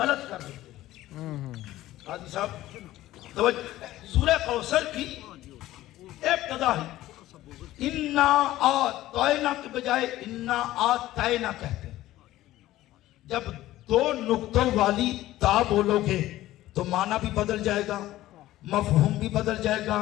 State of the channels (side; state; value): right; quieter; 15.4 dB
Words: کر دیتے ہیں۔ قاضی صاحب توجہ، سورہ کوثر کی ابتدا ہی انا آتینا کے بجائے انا آتینا کہتے ہیں۔ جب دو نقطوں والی تا بولو گے تو معنی بھی بدل جائے گا، مفہوم بھی بدل جائے گا،